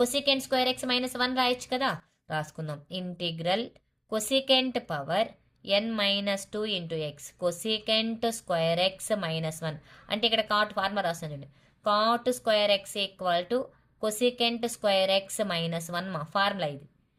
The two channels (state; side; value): identical; both; correlation 1.00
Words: స్క్వేర్ ఎక్స్ -1 రాయొచ్చు కదా, రాసుకుందాం. Integral cosecant power N-2 into x cosecant square x -1 అంటే ఇక్కడ కాట్ ఫార్ములా రాస్తాను చూడండి. Cot square x equal to cosecant square x -1 మా ఫార్ములా ఇది.